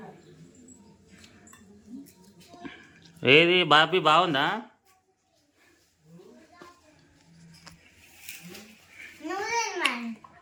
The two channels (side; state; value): both; identical; correlation 1.00